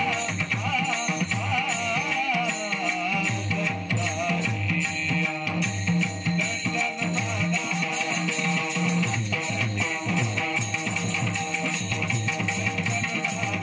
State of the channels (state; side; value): identical; both; correlation 1.00